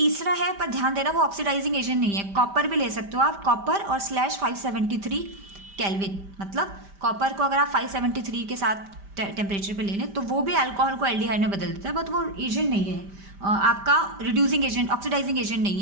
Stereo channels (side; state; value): left; late; 5.1 ms